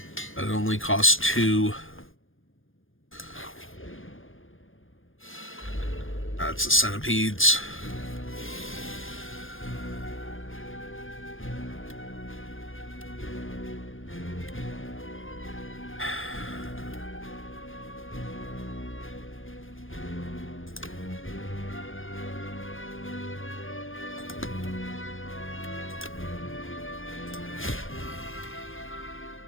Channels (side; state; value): right; late; 0.59 ms